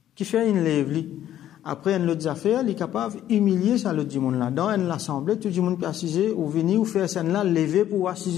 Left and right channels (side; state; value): right; quieter; 11.8 dB